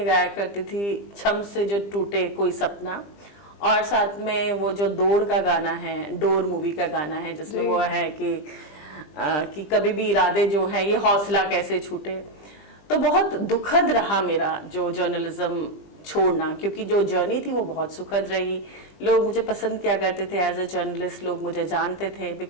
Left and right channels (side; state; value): right; late; 20 ms